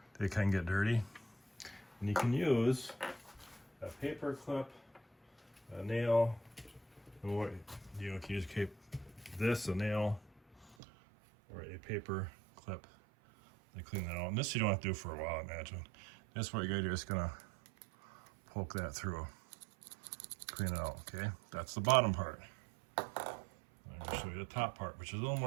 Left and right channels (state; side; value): drops out; left; at 10.8 s